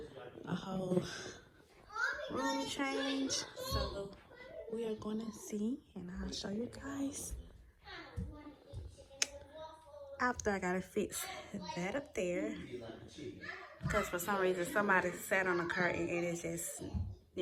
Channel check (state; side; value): identical; both; correlation 1.00